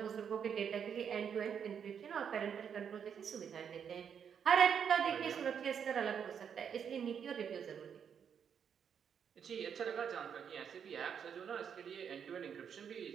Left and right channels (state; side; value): quieter; left; 7.6 dB